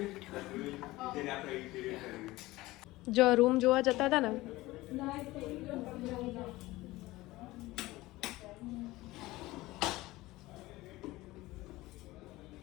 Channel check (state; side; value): quieter; right; 18.9 dB